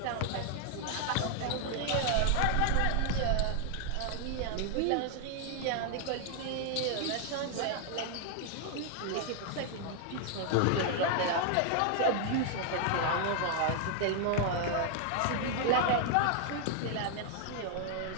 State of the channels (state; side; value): different; both; correlation 0.00